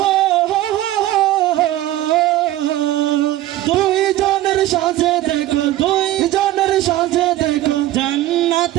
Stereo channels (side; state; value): left; quieter; 14.9 dB